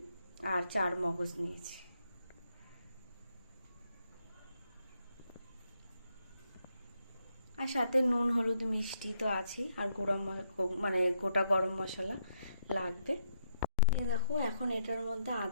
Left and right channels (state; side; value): inverted; both; correlation -0.77